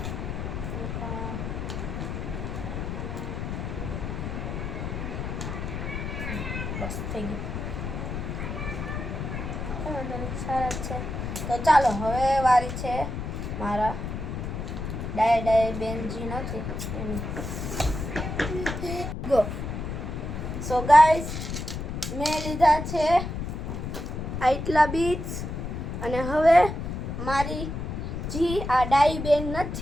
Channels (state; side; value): noise; left; rumble, 5 dB below the sound